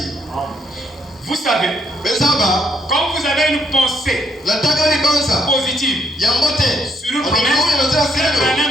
Vous savez, quand vous avez une pensée positive sur une promesse, c'est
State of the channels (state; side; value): normal; both; correlation 0.72